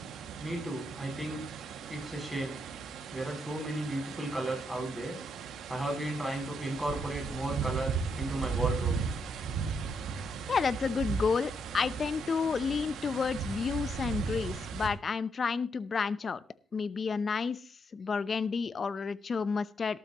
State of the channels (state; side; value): normal; both; correlation 0.78